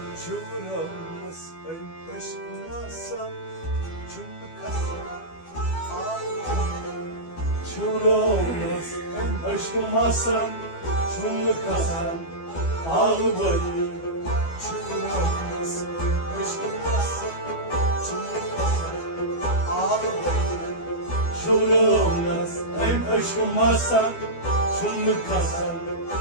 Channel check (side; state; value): right; late; 12 ms